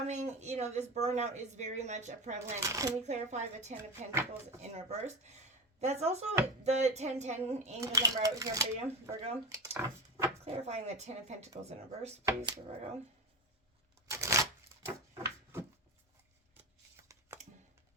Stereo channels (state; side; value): normal; both; correlation 0.22